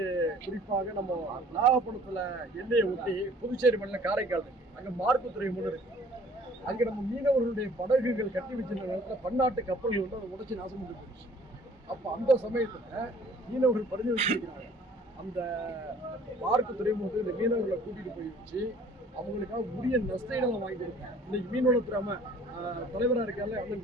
குறிப்பாக நம்ம நாகப்பட்டினத்தில் எல்லையை ஒட்டி புதுச்சேரி மாநிலம் காரைக்கால் இருக்கு, அங்கே மார்க்கு துறைமுகம் இருக்கு. அங்கே நம்ம மீனவர்களுடைய படகுகள் கட்டி வச்சிருந்த நேரத்தில் பன்னாட்டு கப்பல்கள் அதை உடைச்சி நாசம் பண்ணி போயிடுச்சு. அப்போ அந்த சமயத்தில் மீனவர்கள் பரிந்து வச்சிருக்கிறாங்க, அந்த பார்க்கு துறைமுகத்துக்கு இந்த மீனவர்களை கூட்டிகிட்டு போய் வச்சு அவங்களுக்காக உரிய நஷ்டங்களை வாங்கி கொடுப்பேன். இன்னைக்கு மீனவளத்துறை தலைவராக இருக்கால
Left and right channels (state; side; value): normal; both; correlation 0.54